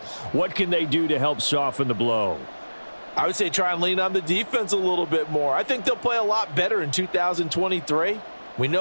What can they do to help soften the blow? I would say try and lean on the defense a little bit more. I think they'll play a lot better in 2023. We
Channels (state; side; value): inverted; both; correlation -1.00